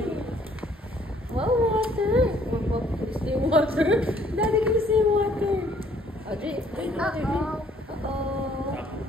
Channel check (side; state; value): both; normal; correlation 0.62